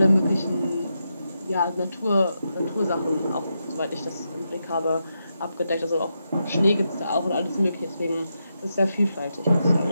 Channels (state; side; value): inverted; both; correlation -0.85